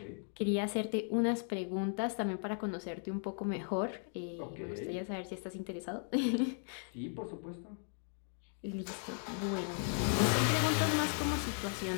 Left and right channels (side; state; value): right; silent; 53 dB below the other